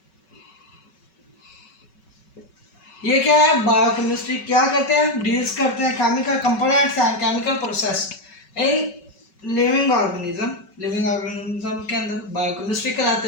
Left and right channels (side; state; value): right; late; 5.3 ms